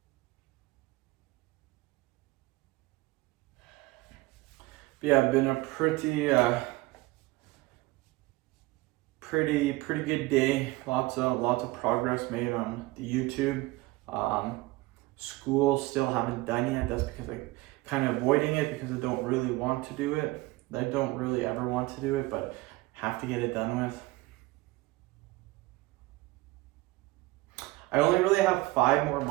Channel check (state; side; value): quieter; left; 20.9 dB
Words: But yeah, been a pretty good day. Lots of progress made on the YouTube. School still haven't done yet. That's because I kind of avoiding it because I don't really want to do it. I don't really ever want to do it, but have to get it done with. I only really have 5 more